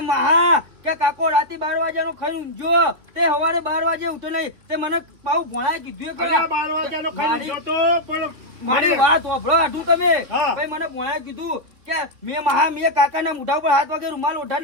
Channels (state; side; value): late; left; 3.1 ms